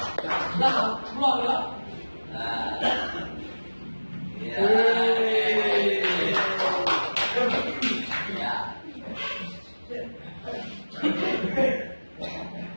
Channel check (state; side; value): inverted; both; correlation -1.00